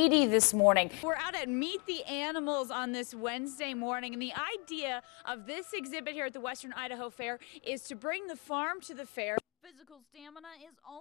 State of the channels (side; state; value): right; quieter; 32.0 dB